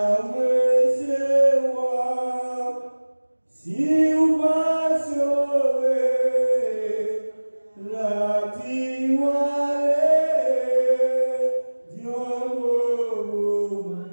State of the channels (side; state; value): both; inverted; correlation -1.00